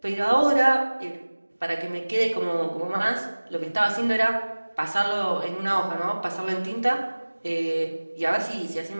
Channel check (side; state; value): both; inverted; correlation -1.00